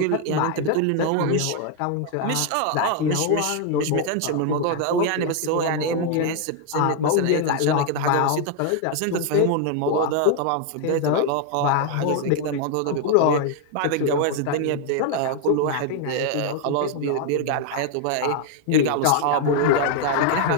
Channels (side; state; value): both; different; correlation 0.00